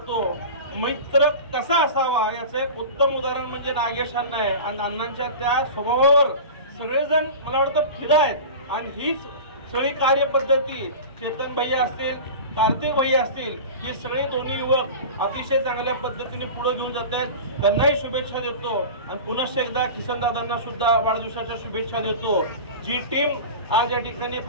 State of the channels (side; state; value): both; inverted; correlation -0.32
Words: मैत्र कसा असावा याचं एक उत्तम उदाहरण म्हणजे नागेश अण्णा आहे आणि अण्णांच्या त्या स्वभावावर सगळेजण मला वाटतं फिदा आहेत आणि हीच सगळी कार्यपद्धती चेतन भैया असतील, कार्तिक भैया असतील, हे सगळे दोन्ही युवक अतिशय चांगल्या पद्धतीने पुढे घेऊन जात आहेत. त्यांनाही शुभेच्छा देतो आणि पुन्हा एकदा किसनदादांना सुद्धा वाढदिवसाच्या शुभेच्छा देतो. जी टीम आज या ठिकाणी